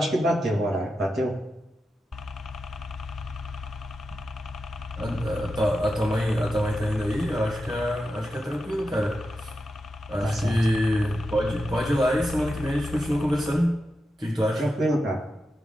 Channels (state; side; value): normal; both; correlation 0.89